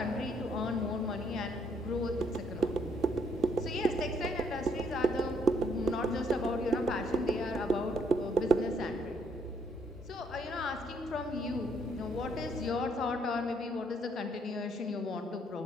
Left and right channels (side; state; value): both; normal; correlation 0.69